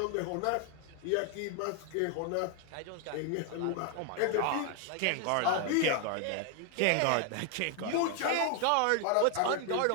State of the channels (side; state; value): both; different; correlation 0.00